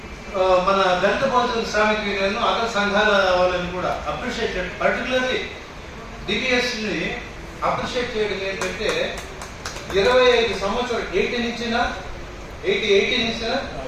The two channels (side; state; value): both; identical; correlation 1.00